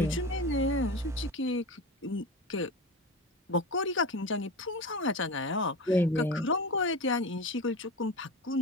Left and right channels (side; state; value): both; normal; correlation 0.26